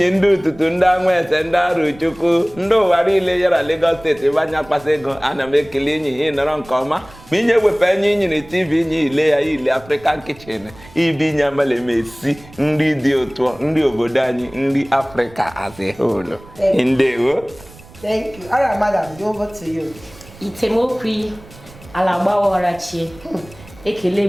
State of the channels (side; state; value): right; noise; rumble, 21 dB below the sound